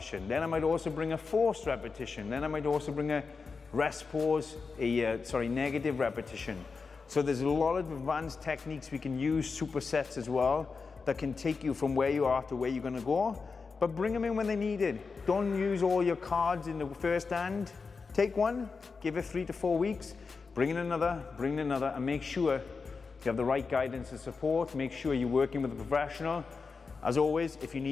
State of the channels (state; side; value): quieter; right; 4.8 dB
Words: Then I might also bring a forced repetition. Then I might also bring a rest pause, negative repetition. So there's a lot of advanced techniques we can use, supersets as well, that can take you from where you are to where you're gonna go, but bring them in when they need it. Don't use all your cards in the first hand. Take one, give it 3 to 4 weeks, bring in another, and make sure you have the right guidance and support. Make sure you're working with a professional. As always, if you